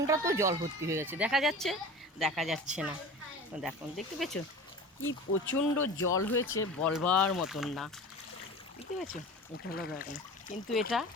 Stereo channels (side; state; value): both; normal; correlation 0.36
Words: তো জল ভর্তি হয়ে গেছে, দেখা যাচ্ছে না। তো দেখো, দেখতে পেয়েছো কি প্রচণ্ড জল হয়েছে, বলবার মতন না। দেখতে পেয়েছো, এটা হলো ব্যাপার। কিন্তু এটা